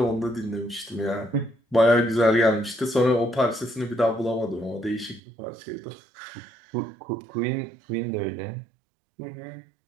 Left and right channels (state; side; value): drops out; left; at 5.2 s